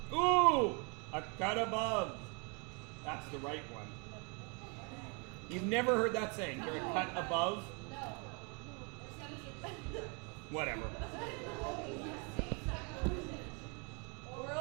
Ooh! A cut above. That's the right one. You've never heard that saying. You're a cut above? No. Whatever.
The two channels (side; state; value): left; quieter; 33.9 dB